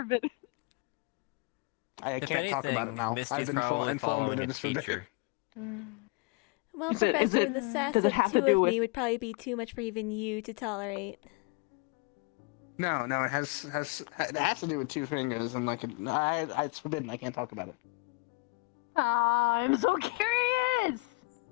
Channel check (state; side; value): quieter; right; 28.6 dB